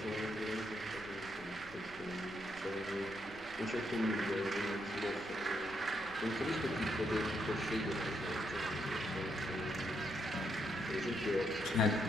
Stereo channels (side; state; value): left; noise; rumble, 21 dB below the sound